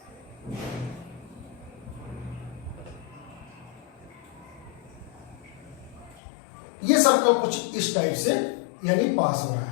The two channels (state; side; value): drops out; right; at 6.2 s